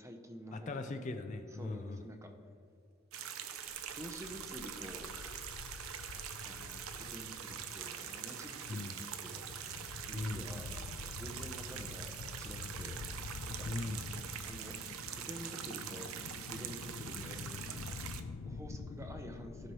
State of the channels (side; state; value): both; normal; correlation 0.49